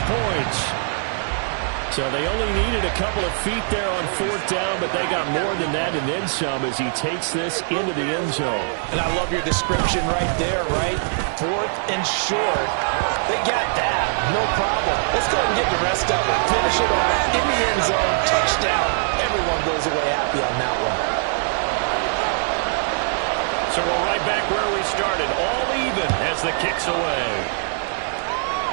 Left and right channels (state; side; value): silent; left; digital silence